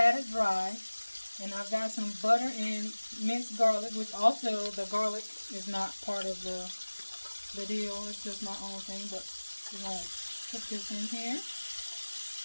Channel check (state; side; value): inverted; both; correlation -1.00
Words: it dry, and I've got some butter and minced garlic, which also the garlic is not part of the deal. It's just my own thing, but we're going to put this in here.